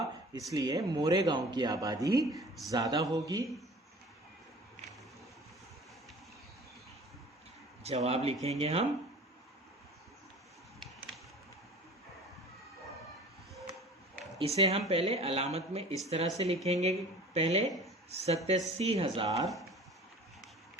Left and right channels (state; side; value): normal; both; correlation 0.43